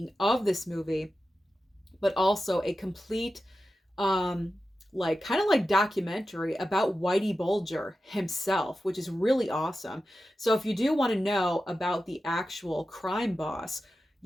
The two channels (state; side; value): normal; both; correlation 0.92